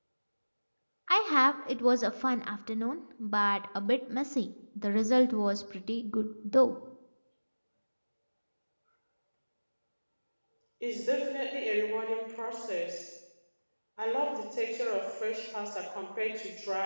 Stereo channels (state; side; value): inverted; both; correlation -1.00